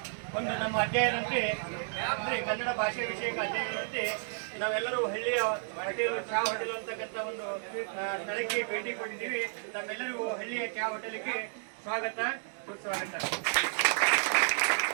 ಒಂದು ನಮ್ಮ ಅಧ್ಯಯನಂತೆ ಅಂದರೆ ಕನ್ನಡ ಭಾಷೆ ವಿಷಯಕ ಅಧ್ಯಯನಂತೆ ನಾವೆಲ್ಲರೂ ಹಳ್ಳಿಯ ಹೋಟೆಲ್ ಚಹಾ ಹೋಟೆಲ್ ಅಂತಕ್ಕಂಥ ಒಂದು ಸ್ಥಳಕ್ಕೆ ಭೇಟಿ ಕೊಟ್ಟಿದ್ದೀವಿ. ನಮ್ಮೆಲ್ಲರಿಗೂ ಹಳ್ಳಿಯ ಚಹಾ ಹೋಟೆಲ್ಗೆ ಸ್ವಾಗತ ಸುಸ್ವಾಗತ.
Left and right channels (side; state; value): left; silent; digital silence